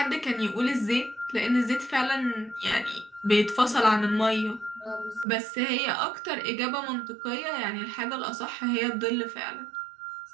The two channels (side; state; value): left; drops out; at 5.2 s